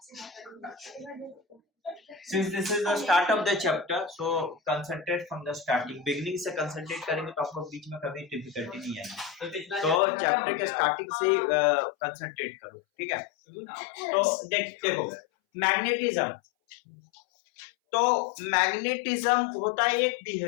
Since this is the start of the chapter, so concentrate from the starting. Beginning से concentrate करेंगे तो आपको बीच में कभी difficulty नहीं आएगी. तो chapter के starting से concentrate करो, ठीक है? तो देखो magnetism. तो मैग्नेटिज्म होता है एक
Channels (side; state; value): right; drops out; at 10.0 s